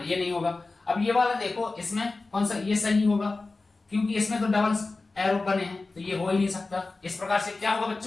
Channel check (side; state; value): right; quieter; 3.5 dB